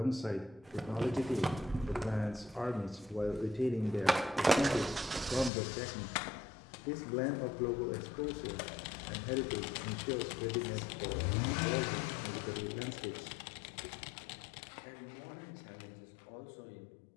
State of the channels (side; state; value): right; drops out; at 5.5 s